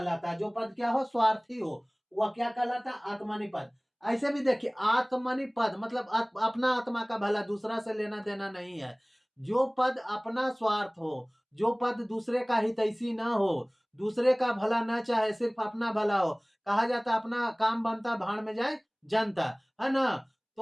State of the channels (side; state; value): both; identical; correlation 1.00